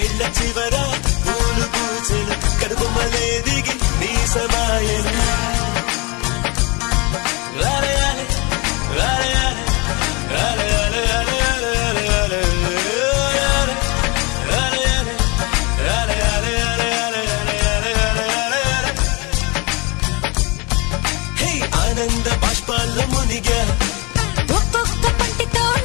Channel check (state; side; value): quieter; right; 27.8 dB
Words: చివర పూలు పూచెను కనుబొమ్మలే దిగి నీ సమాయను ఆనంద బాష్పాల్లో మునిగా ఒక్కొక్క పంటితో